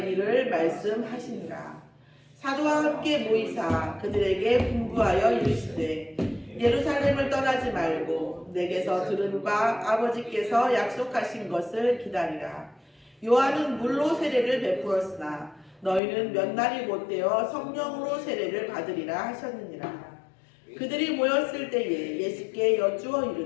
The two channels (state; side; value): drops out; right; at 16.0 s